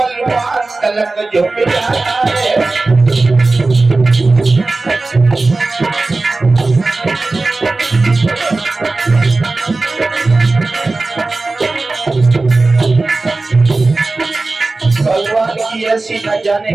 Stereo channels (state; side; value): quieter; left; 3.4 dB